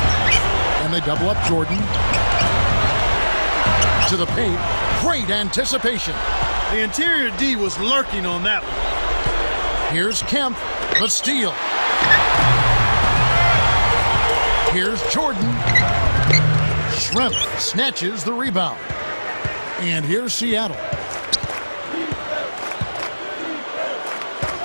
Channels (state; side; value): inverted; both; correlation -1.00